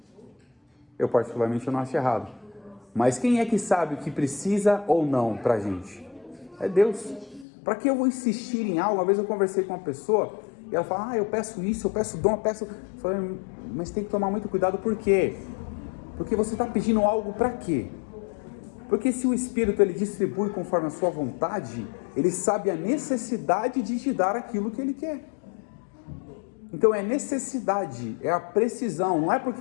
Eu particularmente não acho errado. Mas quem é que sabe o que precisa ou não para a gente? É Deus. Para que eu vou insistir em algo? Uma vez eu conversei com uma pessoa e ela fala, eu peço isso, eu peço dom, eu peço... Eu falei, mas tem que tomar muito cuidado, por quê? Porque você está pedindo algo para quê? Porque se o Espírito ele distribui conforme a sua vontade, ele sabe a necessidade de te dar aquilo que ele quer. Então é necessidade, é a precisão, não é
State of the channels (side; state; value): right; drops out; at 7.5 s